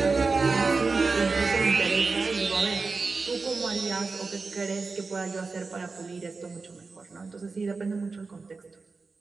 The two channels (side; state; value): left; quieter; 4.2 dB